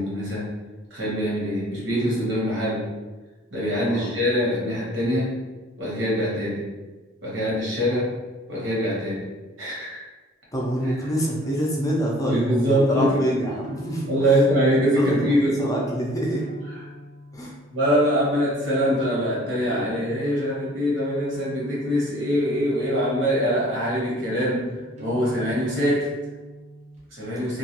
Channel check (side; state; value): both; normal; correlation 0.52